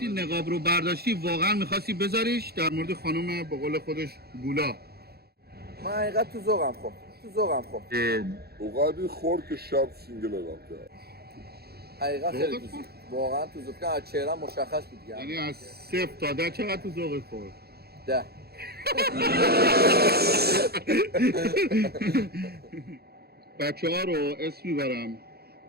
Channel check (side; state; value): left; late; 0.46 ms